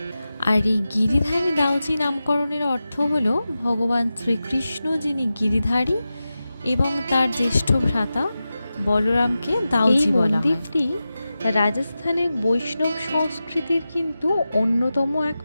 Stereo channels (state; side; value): inverted; both; correlation -0.93